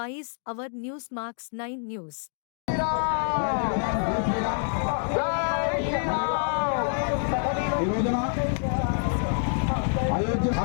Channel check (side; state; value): right; silent; 60 dB below the other